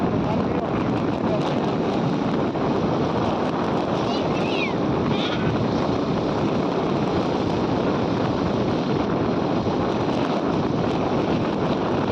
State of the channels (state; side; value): identical; both; correlation 1.00